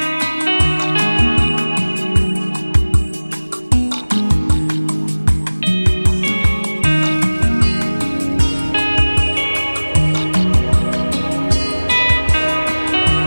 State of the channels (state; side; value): inverted; both; correlation -1.00